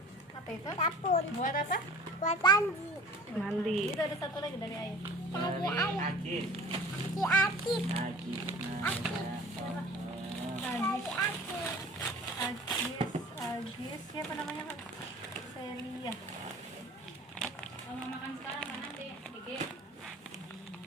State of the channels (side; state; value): both; normal; correlation 0.44